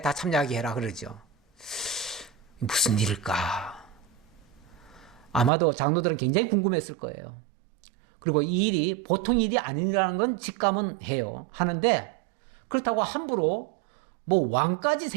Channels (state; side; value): drops out; left; at 5.5 s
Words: 다 참여하게 해라 그러죠. 무슨 일일까? 아마도 장로들은 굉장히 궁금했을 거예요. 그리고 이 일이 보통 일이 아니라는 건 직감은 해요. 하는데 그렇다고 함부로 뭐 왕까지